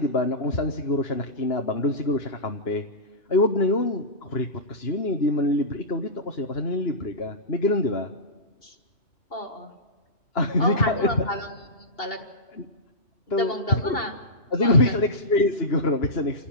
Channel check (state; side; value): late; right; 2.7 ms